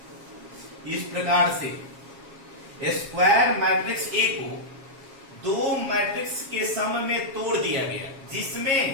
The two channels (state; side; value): late; left; 7.3 ms